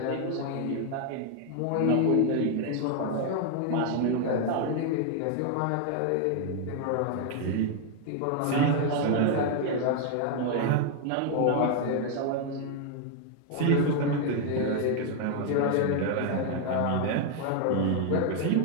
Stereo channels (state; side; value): different; both; correlation 0.00